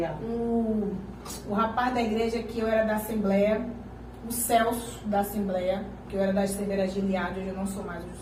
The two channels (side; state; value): both; identical; correlation 1.00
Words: O rapaz da igreja que eu era da Assembleia, o Celso da Assembleia, que eu era da Assembleia de Gilead, hoje eu não sou mais, eu